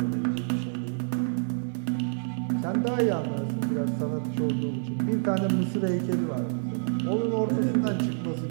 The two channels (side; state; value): left; silent; digital silence